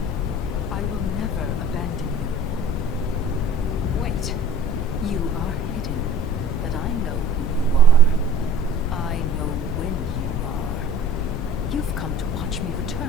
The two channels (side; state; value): both; normal; correlation 0.45